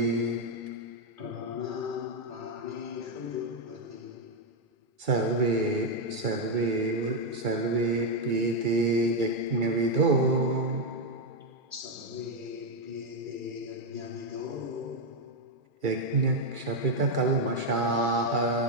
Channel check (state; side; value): late; left; 2.3 ms